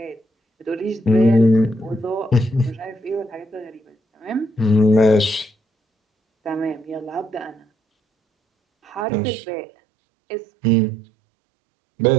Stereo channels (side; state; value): left; drops out; at 9.1 s